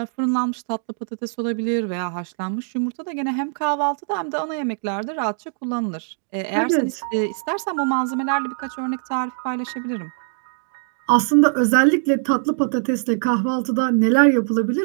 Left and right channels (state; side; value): silent; left; digital silence